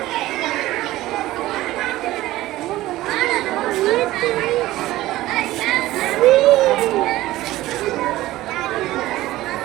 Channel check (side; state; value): left; quieter; 16.4 dB